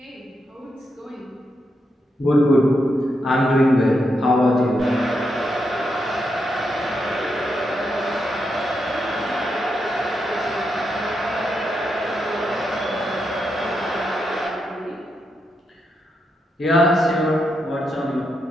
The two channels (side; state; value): both; normal; correlation 0.83